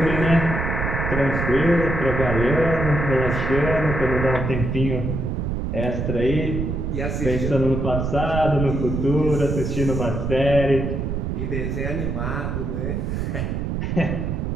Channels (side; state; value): right; noise; rumble, 2 dB below the sound